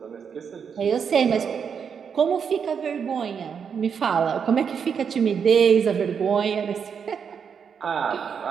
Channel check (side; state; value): left; quieter; 6.9 dB